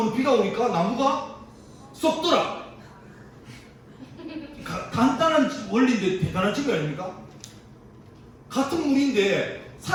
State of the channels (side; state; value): both; identical; correlation 1.00